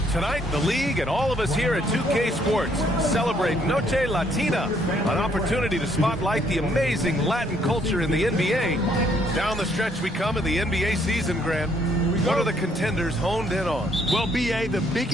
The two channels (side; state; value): both; normal; correlation 0.68